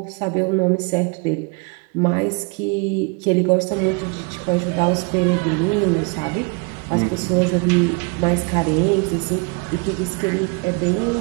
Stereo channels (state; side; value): quieter; left; 32.2 dB